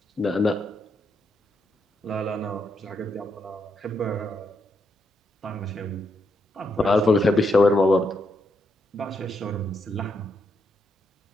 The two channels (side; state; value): both; normal; correlation 0.79